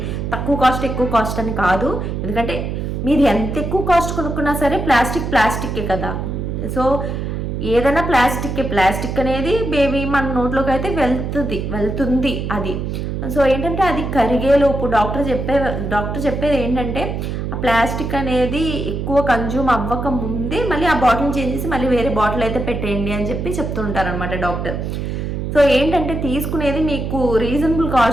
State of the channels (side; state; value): right; noise; hum, 3 dB below the sound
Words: తక్కువ కాస్ట్ ఎక్కువ కాస్ట్ అని కాదు, ఎందుకంటే మీరు ఎంత ఎక్కువ కాస్ట్ కొనుక్కున్నా సరే ప్లాస్టిక్కే కదా. సో ఏదైనా ప్లాస్టిక్ అనేది బేబీ మన నోట్లోకి అయితే వెళ్తుంది అది. సో ఏంటంటే అది కరిగేలోపు డాక్టర్ చెప్పేది ఏంటంటే ఆ ప్లాస్టిక్ అనేది ఎక్కువ కన్జ్యూమ్ అవ్వక ముందే మళ్ళీ ఆ బాటిల్ చేంజ్ చేసి మళ్ళీ వేరే బాటిల్ అయితే పెట్టేయండి అని చెప్పి చెప్తుంటారనమాట డాక్టర్. సో ఏంటంటే తీసుకునేది మీకు రీజనబుల్